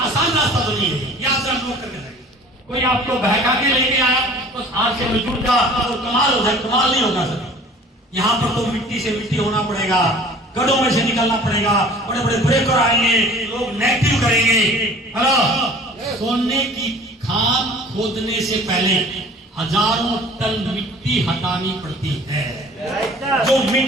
आसान रास्ता तो नहीं है, याद से लोग करके जाएंगे। कोई आपको बहका के लेके आया बस आरसीएम में जुट जा तो कमाल हो जाए, कमाल नहीं होगा सर। यहाँ पर तो मिट्टी से मिट्टी होना पड़ेगा, गड्ढों में से निकलना पड़ेगा, बड़े बड़े ब्रेकर आएंगे, लोग नेगेटिव करेंगे। हेलो, सोने की खान खोदने से पहले हजारों टन मिट्टी हटानी पड़ती है। जो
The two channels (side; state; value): both; normal; correlation 0.47